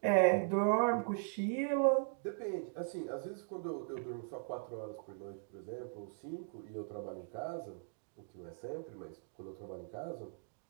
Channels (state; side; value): silent; left; digital silence